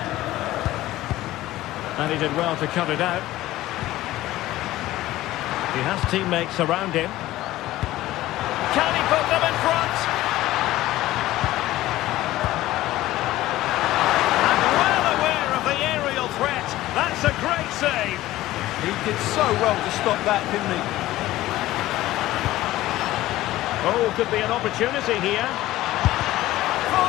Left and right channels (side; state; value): right; quieter; 16.0 dB